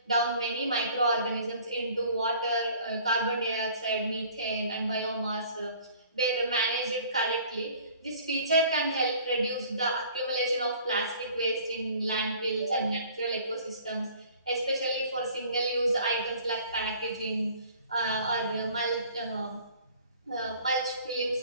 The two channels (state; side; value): inverted; both; correlation -0.51